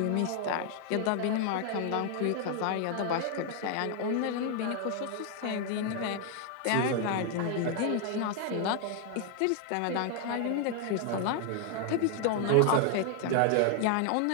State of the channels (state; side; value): different; both; correlation 0.00